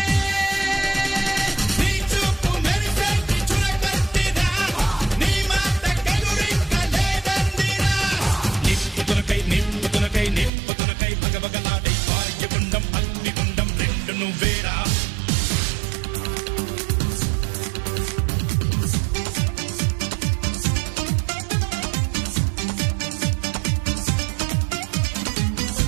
నిప్పుతునకై భగభగలాడై వాయుగుండం అగ్నిగుండం రెండు నువ్వేరా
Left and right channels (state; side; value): drops out; left; at 10.5 s